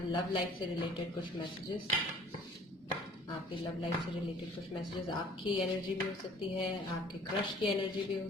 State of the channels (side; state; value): both; normal; correlation 0.53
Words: लव लाइफ से रिलेटेड कुछ मैसेजेस. आपकी लव लाइफ से रिलेटेड कुछ मैसेजेस. आपकी एनर्जी भी हो सकती है, आपके क्रश की एनर्जी भी हो